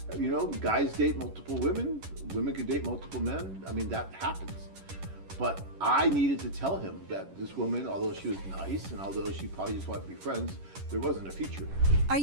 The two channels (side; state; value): left; late; 11 ms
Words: Guys date multiple women. Women can date multiple men. I mean, that happens. But I needed to tell him that this woman, although she was nice and although she probably just wanted to be friends, there wasn't a future. Are